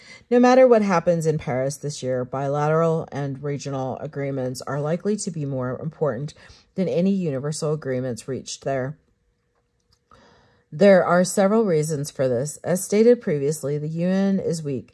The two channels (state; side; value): identical; both; correlation 1.00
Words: No matter what happens in Paris this year, bilateral and regional agreements are likely to be more important than any universal agreements reached there. There are several reasons for this. As stated previously, the UN is